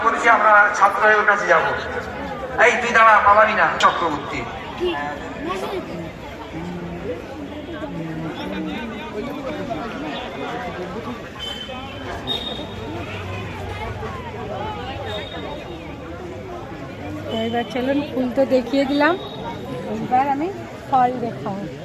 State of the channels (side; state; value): both; identical; correlation 1.00